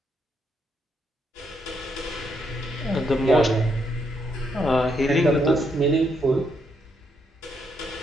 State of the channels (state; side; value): normal; both; correlation 0.77